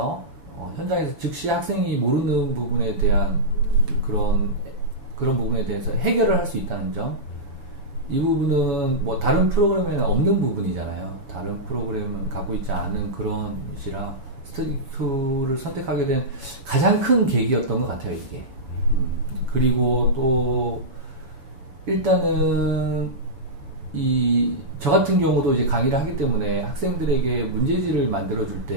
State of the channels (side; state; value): left; late; 7.1 ms